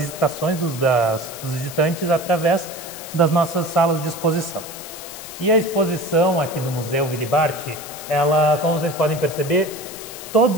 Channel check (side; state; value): left; noise; hiss, 12 dB below the sound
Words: dos visitantes através das nossas salas de exposição. E a exposição aqui do Museu Willy Barth, ela, como vocês podem perceber, todos